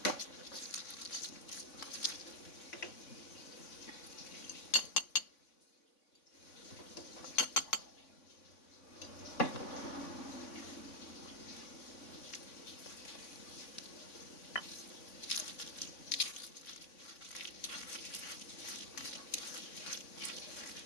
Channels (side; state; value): right; late; 3.6 ms